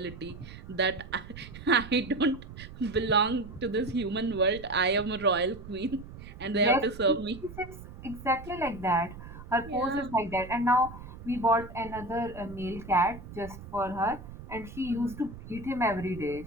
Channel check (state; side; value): noise; right; rumble, 14 dB below the sound